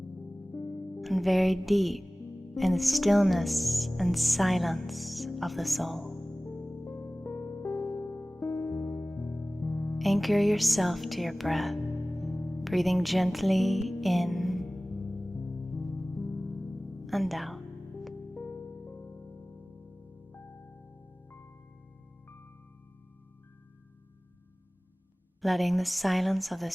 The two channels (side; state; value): both; normal; correlation 0.98